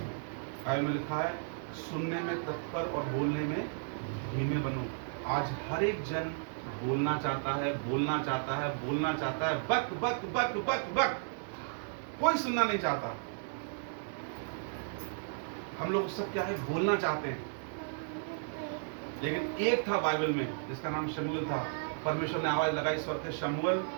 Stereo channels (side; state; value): left; silent; digital silence